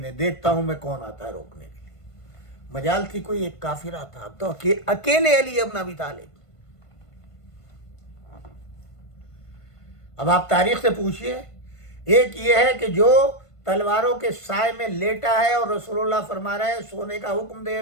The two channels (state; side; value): late; right; 1.5 ms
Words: دیکھتا ہوں میں کون آتا ہے روکنے کے لیے. مجال تھی کوئی ایک کافر آتا، اب تو اکیلے علی ابن ابی طالب. اب آپ تاریخ سے پوچھئے، ایک یہ ہے کہ جو تلواروں کے سائے میں لیٹا ہے اور رسول اللہ فرما رہے ہیں، سونے کا حکم دے